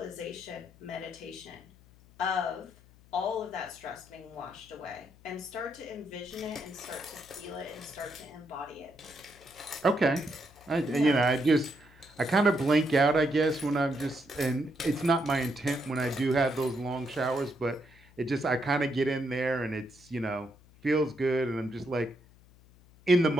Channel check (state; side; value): noise; left; hum, 26 dB below the sound